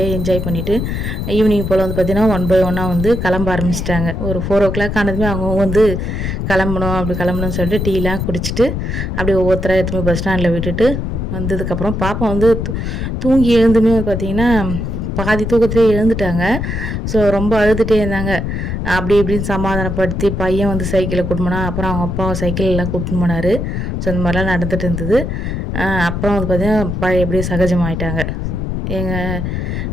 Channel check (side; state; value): left; noise; rumble, 3 dB below the sound